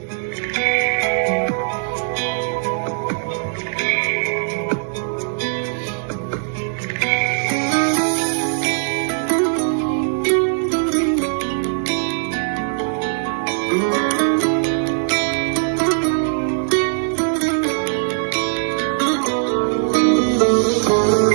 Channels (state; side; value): silent; left; digital silence